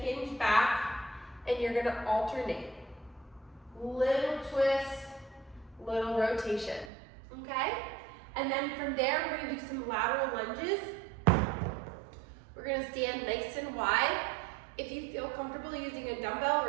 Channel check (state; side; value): drops out; left; at 6.9 s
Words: back, and you're going to alternate. Little twist, little rotation. Okay? And then from there, we're going to do some lateral lunges. We're going to stand nice and wide. If you feel comfortable using a dumbbell,